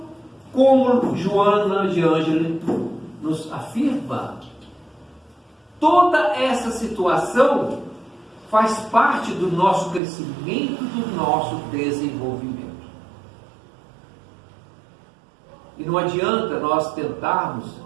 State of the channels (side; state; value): left; drops out; at 10.0 s